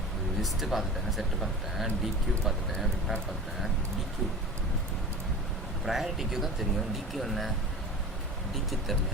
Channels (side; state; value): both; normal; correlation 0.35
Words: லிஸ்ட்டு பார்த்துட்டேன், set பார்த்துட்டேன், டிக்யூ பார்த்துட்டேன், vector பார்த்துட்டேன். டிக்யூ priority queue தான் தெரியும், டிக்யூ என்ன டிக்யூ